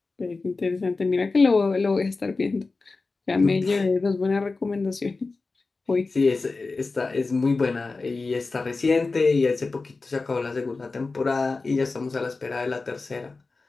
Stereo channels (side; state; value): right; quieter; 3.8 dB